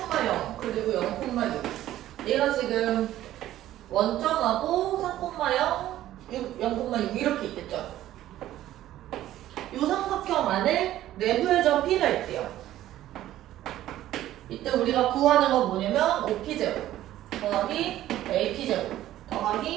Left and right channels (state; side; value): quieter; left; 13.6 dB